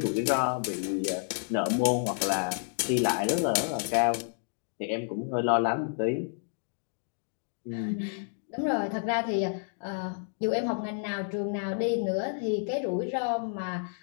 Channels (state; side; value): silent; right; digital silence